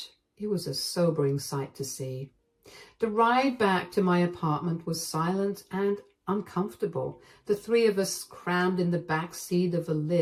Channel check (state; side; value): identical; both; correlation 1.00